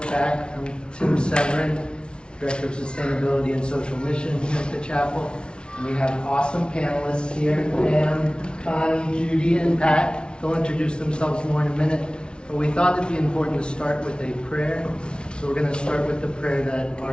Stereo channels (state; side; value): late; right; 0.056 ms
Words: back. I'm Tim Severin, Director of Sustainability and Social Mission here at the chapel. And we have awesome panelists here, Pam, Connie, Judy, and Pat. They'll introduce themselves more in a minute, but we thought it'd be important to start with a prayer. So we're going to start with the prayer that our